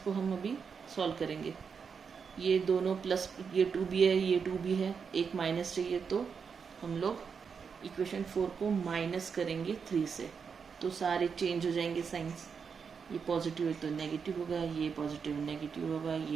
हम अभी सॉल्व करेंगे। ये दोनों प्लस, ये 2B है ये 2B है, एक माइनस चाहिए तो हम लोग इक्वेशन 4 को माइनस करेंगे 3 से, तो सारे चेंज हो जाएंगे साइंस। ये पॉजिटिव है तो नेगेटिव होगा, ये पॉजिटिव नेगेटिव होगा,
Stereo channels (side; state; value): left; quieter; 6.1 dB